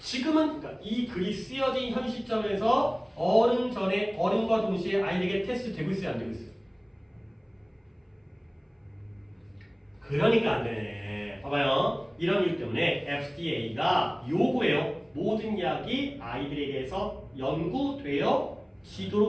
그러니까 이 글이 쓰여진 현 시점에서 어른과 동시에 아이에게 테스트 되고 있어요? 안 되고 있어요? 그러니까 안 되네. 봐봐요. 이런 이유 때문에 FDA가 요구해요. 모든 약이 아이들에게서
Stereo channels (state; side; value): identical; both; correlation 1.00